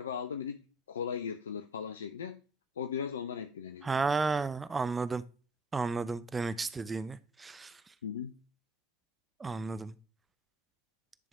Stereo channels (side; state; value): both; normal; correlation 0.56